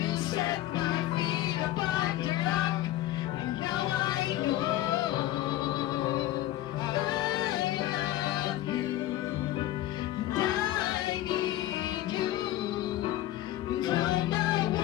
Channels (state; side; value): quieter; right; 14.5 dB